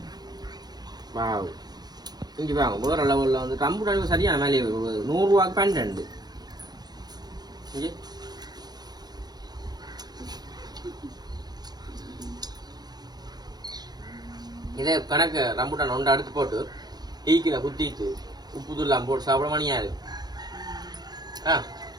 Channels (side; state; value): left; late; 0.19 ms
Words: வாவ் இங்கே வாங்க வேற லெவலில் வந்து ரம்புட்டானுக்கு சரியான மேலே 100 ரூபாய்க்கு 12 இங்கே இதே கணக்கு ரம்புட்டான் ஒன்று அடுத்து போட்டு ஈக்கில குத்திட்டு உப்பு தூள்லாம் போட்டு சாப்பிட மணியா இருக்கு